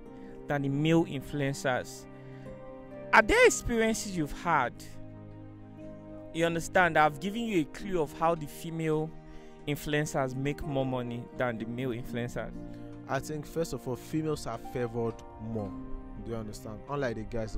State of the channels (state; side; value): identical; both; correlation 1.00